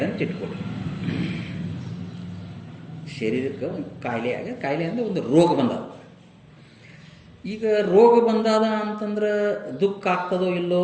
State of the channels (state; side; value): identical; both; correlation 1.00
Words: ಅಂತ ಇಟ್ಕೊಳ್ರಿ, ಶರೀರಕ್ಕೆ ಒಂದು ಕಾಯಿಲೆ ಆಗ್ಯದ, ಕಾಯಿಲೆ ಅಂದರೆ ಒಂದು ರೋಗ ಬಂದದ. ಈಗ ರೋಗ ಬಂದಾದ ಅಂತಂದ್ರೆ ದುಃಖ ಆಗ್ತದೋ ಇಲ್ಲೋ?